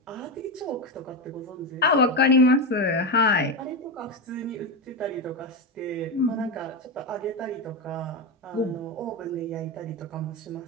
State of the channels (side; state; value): both; normal; correlation 0.13